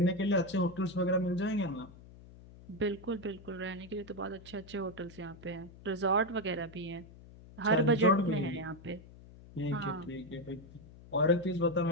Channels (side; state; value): left; noise; hum, 19 dB below the sound